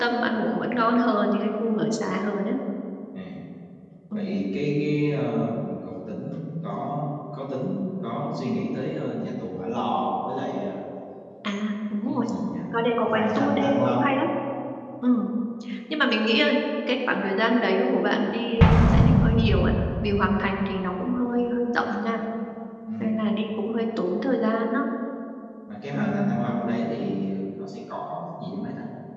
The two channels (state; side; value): identical; both; correlation 1.00